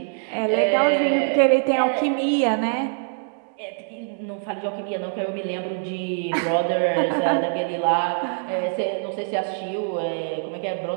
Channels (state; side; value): silent; left; 63 dB below the other